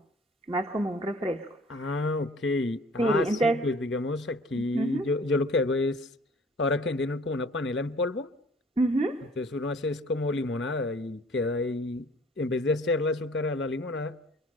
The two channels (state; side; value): normal; both; correlation 0.52